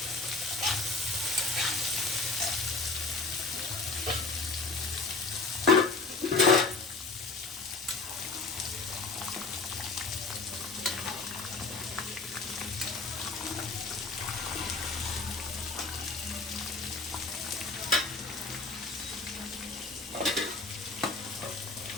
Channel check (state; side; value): quieter; right; 3.7 dB